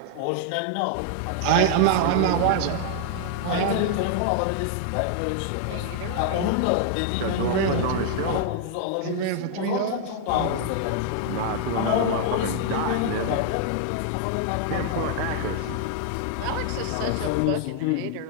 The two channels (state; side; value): different; both; correlation 0.00